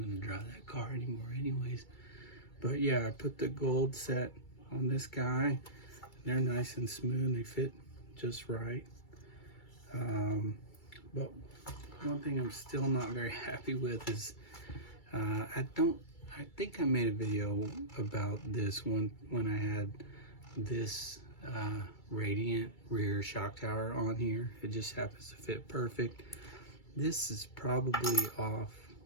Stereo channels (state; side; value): late; right; 2.3 ms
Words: going to drive that car anymore anyways. But yeah, I put the gold set on this guy. They're nice and smooth. They fit just right. But one thing I'm still not very happy with is I think I made a video about this one when I had this Radiant rear shock tower on here. It just happens to fit perfect. This is probably off